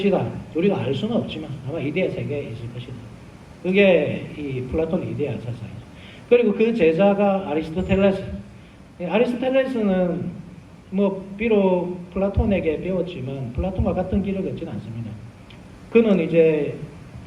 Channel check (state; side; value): identical; both; correlation 1.00